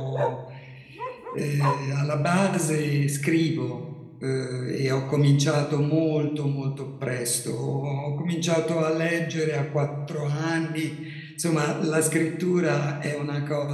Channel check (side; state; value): both; identical; correlation 1.00